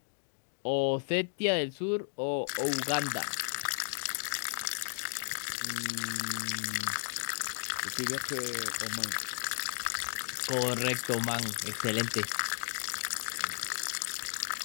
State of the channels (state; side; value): silent; right; digital silence